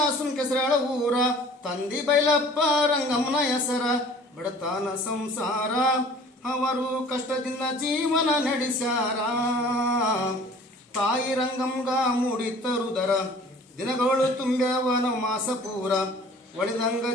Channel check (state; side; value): normal; both; correlation 0.49